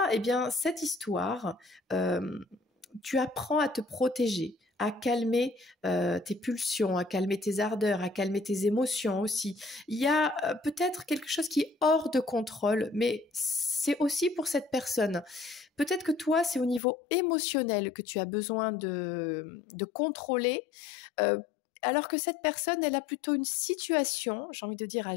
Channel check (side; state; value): right; drops out; at 16.8 s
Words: eh bien, cette histoire, tu apprends à te protéger, à calmer tes pulsions, à calmer tes ardeurs, à calmer tes émotions aussi. Il y a peut-être quelque chose qui est hors de contrôle, mais c'est aussi pour cette personne. Peut-être que toi, c'est au niveau émotionnel que tu as besoin de contrôler, alors que cette personne, elle a plutôt une situation, j'ai envie de dire, à